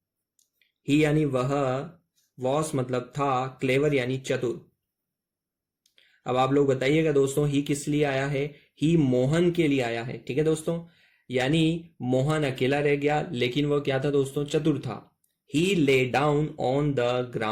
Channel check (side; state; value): both; identical; correlation 1.00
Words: ही यानी वह, वॉस मतलब था, क्लेवर यानी चतुर। अब आप लोग बताइएगा दोस्तों, ही किस लिए आया है, ही मोहन के लिए आया है। ठीक है दोस्तों, यानी मोहन अकेला रह गया, लेकिन वह क्या था दोस्तों, चतुर था। ही lay down on the